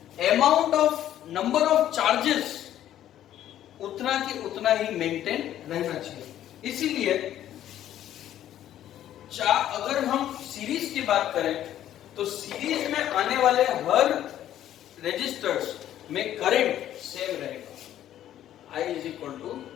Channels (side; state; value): right; quieter; 11.8 dB